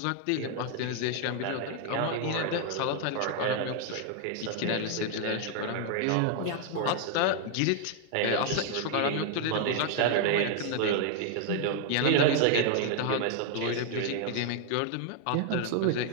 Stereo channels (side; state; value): both; different; correlation 0.00